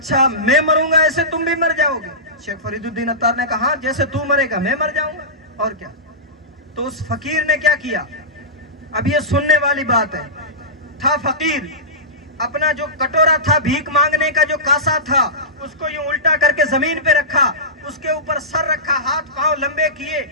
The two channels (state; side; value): normal; both; correlation -0.19